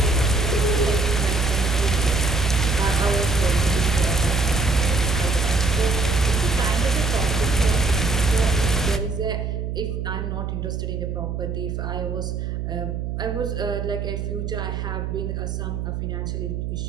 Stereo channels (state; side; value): noise; right; hum, 2 dB below the sound